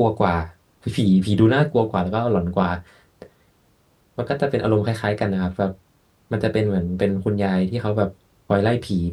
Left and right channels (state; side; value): identical; both; correlation 1.00